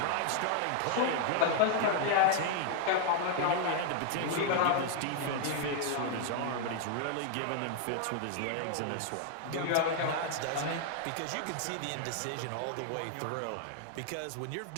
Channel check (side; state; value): both; different; correlation 0.00